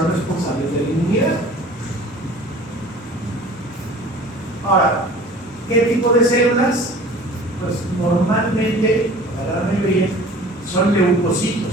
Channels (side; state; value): both; normal; correlation 0.45